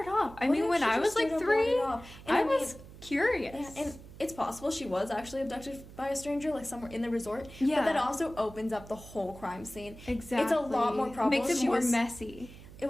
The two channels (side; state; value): right; noise; hum, 17 dB below the sound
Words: off? I mean, when I was, like, 3, I was curious. Yeah, and it's possible she was actually abducted by a stranger, like, somewhere in the resort. Yeah. But that also opens up the whole crime scene. Exactly. It's a lot more probable. Makes it more messy.